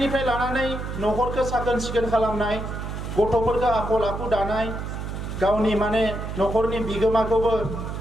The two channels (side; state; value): right; noise; hum, 6 dB below the sound